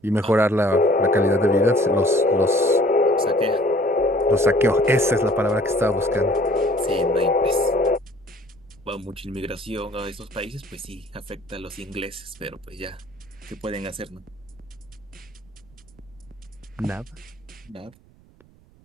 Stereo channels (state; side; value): noise; right; rumble, 28 dB below the sound